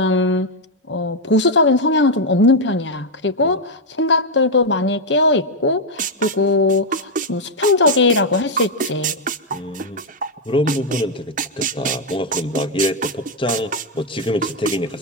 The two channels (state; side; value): normal; both; correlation 0.00